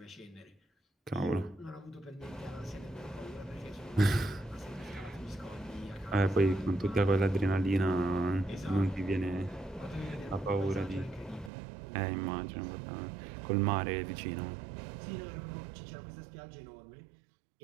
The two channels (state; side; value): drops out; left; at 11.5 s